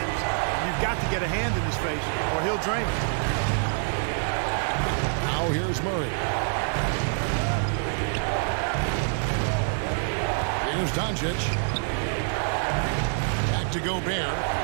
you've got to get a hand in his face or he'll drain it. Now here's Murray. Here's Doncic. Back to Gobert.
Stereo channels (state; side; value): silent; left; digital silence